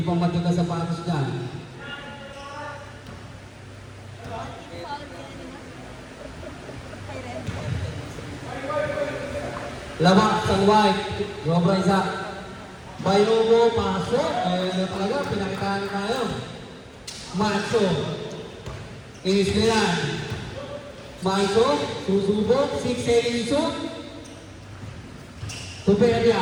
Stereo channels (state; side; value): identical; both; correlation 1.00